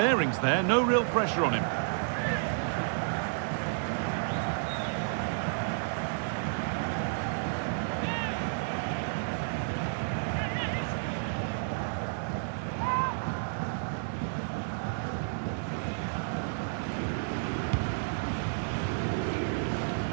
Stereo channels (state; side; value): silent; left; digital silence